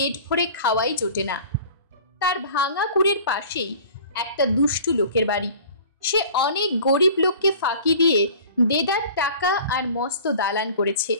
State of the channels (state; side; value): inverted; both; correlation -0.44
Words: ভরে খাওয়াই জোটে না। তার ভাঙা কুড়ের পাশেই একটা দুষ্টু লোকের বাড়ি। সে অনেক গরিব লোককে ফাঁকি দিয়ে দেদার টাকা আর মস্ত দালান করেছে।